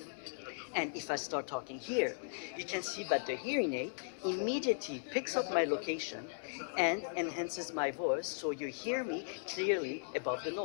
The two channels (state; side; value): silent; right; 53 dB below the other